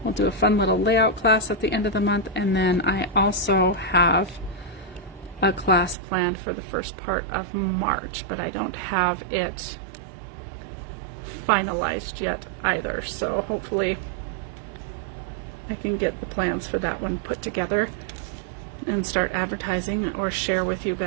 we'll do a fun little layout class at the end of the month, and then I also have a class planned for the first part of March, but I don't have it finalized yet either, so hopefully I can get the plans for that one put together and start advertising or share with you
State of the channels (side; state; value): left; drops out; at 6.0 s